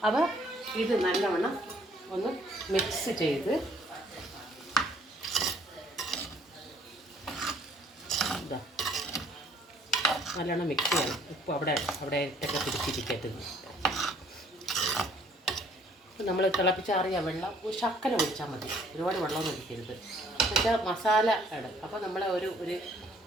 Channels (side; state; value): both; normal; correlation 0.61